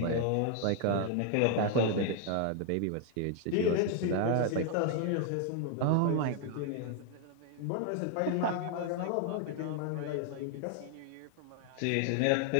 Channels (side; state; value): both; different; correlation 0.00